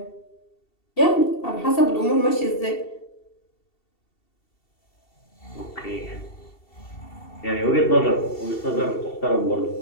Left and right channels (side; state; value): right; late; 2.7 ms